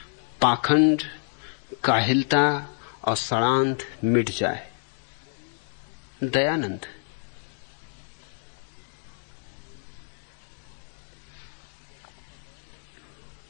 पाखंड, काहिलता और षड्यंत्र मिट जाए। दयानंद।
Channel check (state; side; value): silent; right; digital silence